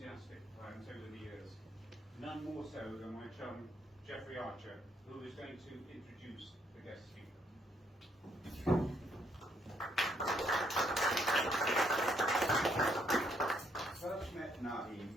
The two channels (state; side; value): normal; both; correlation 0.71